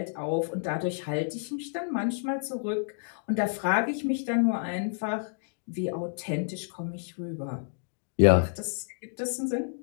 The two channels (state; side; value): silent; right; digital silence